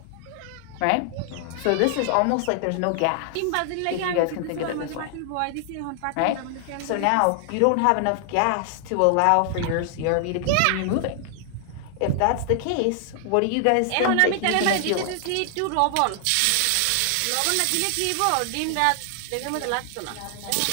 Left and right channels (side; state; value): both; different; correlation 0.00